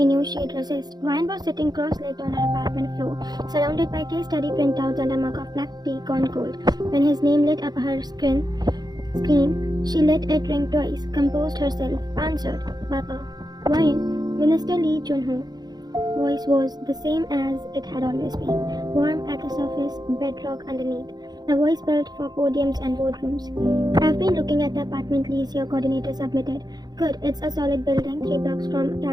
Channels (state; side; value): late; left; 0.20 ms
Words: knew she'd resist. Ryan was sitting cross-legged on her apartment floor, surrounded by case study printouts and a mug of black tea gone cold. When his name lit up her screen, she let it ring twice, composed herself, answered, "Papa." Ryan, Minister Lee Junho voice was the same as it had always been, warm at the surface, bedrock underneath. A voice built for podiums and boardrooms. "I've been looking at the apartment lease your coordinator submitted. Good, it's a solid building, 3 blocks from